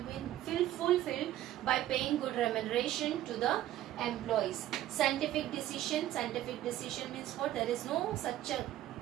be fulfilled by paying good remuneration to the employees. Scientific decision. Scientific decision means what? There is no such a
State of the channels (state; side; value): quieter; left; 13.4 dB